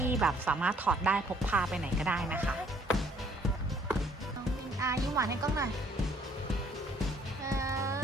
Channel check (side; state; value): both; normal; correlation 0.62